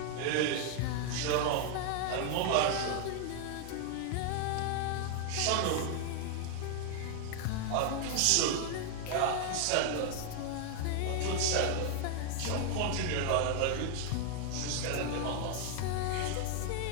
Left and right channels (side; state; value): both; different; correlation 0.00